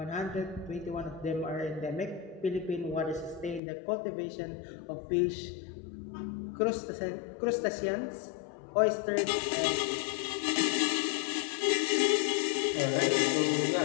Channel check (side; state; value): right; drops out; at 3.6 s